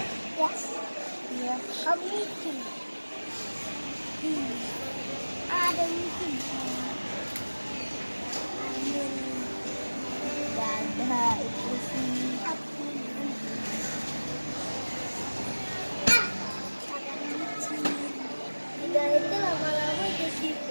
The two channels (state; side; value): inverted; both; correlation -1.00